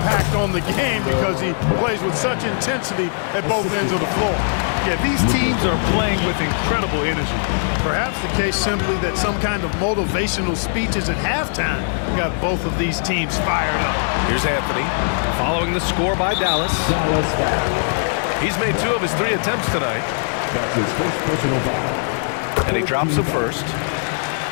on the game because he plays with such intensity at both ends of the floor. Yeah, these teams are playing with incredible energy. Perhaps the case simply that some kind of motivational speeches at halftime got both of these teams fired up. Here's Anthony following the score by Dallas. He's made 2 of his 3 attempts tonight. That's his first personal foul. And he drops the first.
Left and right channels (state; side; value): silent; right; digital silence